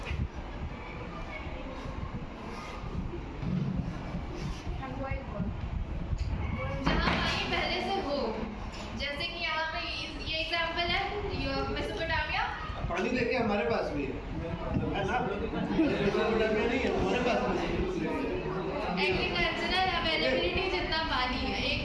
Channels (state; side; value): identical; both; correlation 1.00